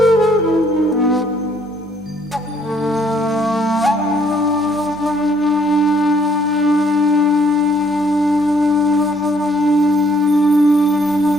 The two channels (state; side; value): normal; both; correlation 0.66